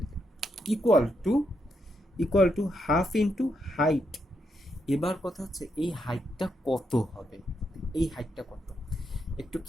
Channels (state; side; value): normal; both; correlation 0.81